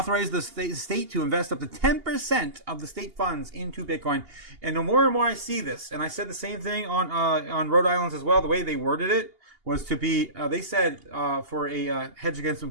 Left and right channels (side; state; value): left; late; 2.8 ms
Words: the state to invest up to 10% of the state funds into Bitcoin. And the more and more I see this, and I said the same thing on Rhode Island as well, the way they worded it was to be, they said, for a hedge against